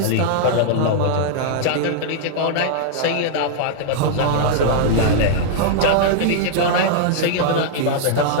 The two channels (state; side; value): different; both; correlation -0.01